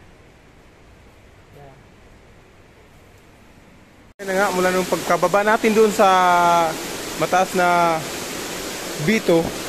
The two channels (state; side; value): identical; both; correlation 1.00